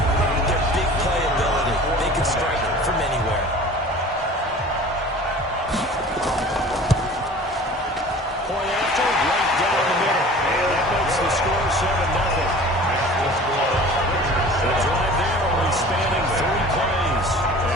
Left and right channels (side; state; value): both; normal; correlation 0.43